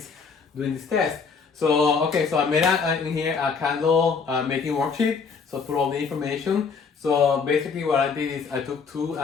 doing this test. So okay, so I made in here a candle making worksheet. So put all the information. So basically what I did is I took two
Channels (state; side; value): quieter; right; 5.4 dB